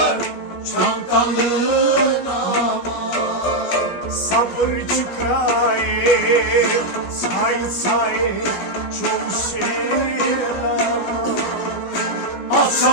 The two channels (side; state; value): right; late; 16 ms